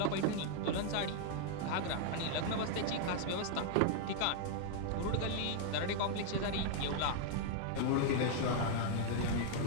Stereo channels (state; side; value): different; both; correlation 0.00